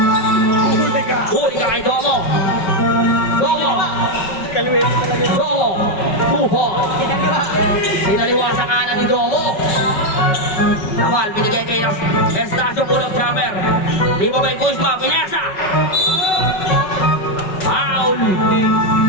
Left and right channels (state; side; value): late; right; 5.4 ms